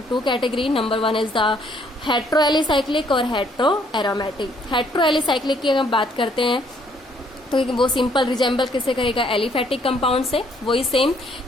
2 category. Number 1 is the heteroalicyclic और heteroaromatic. heteroalicyclic की अगर हम बात करते हैं तो वो सिंपल रिजेंबल किससे करेगा? एलिफैटिक कंपाउंड से। वही सेम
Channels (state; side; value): normal; both; correlation 0.66